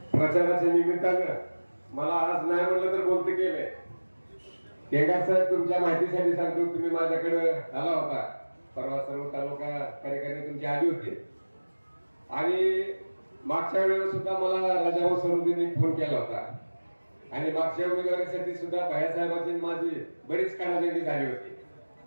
प्रचाराच्या निमित्तानं मला आज नाही म्हणलं तर बोलते केलंय. केंगार साहेब, तुमच्या माहितीसाठी सांगतो, तुम्ही माझ्याकडे आला होता परवा, सर्व तालुका कार्यकर्ते तुमची आली होते आणि मागच्या वेळेला सुद्धा मला राजाभाऊ सरोदींनी फोन केला होता आणि मागच्या उमेदवारीसाठी सुद्धा भायासाहेबांची माझी बरीच कानाजंगी झाली होती.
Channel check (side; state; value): both; inverted; correlation -1.00